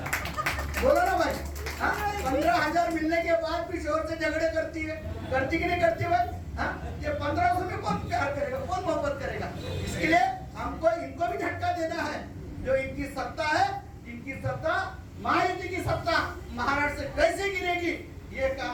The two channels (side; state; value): both; identical; correlation 1.00